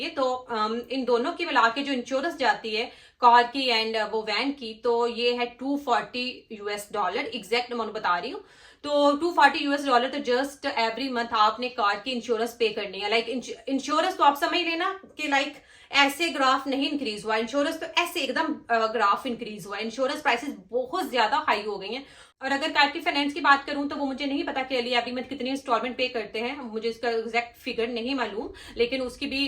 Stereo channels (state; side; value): identical; both; correlation 1.00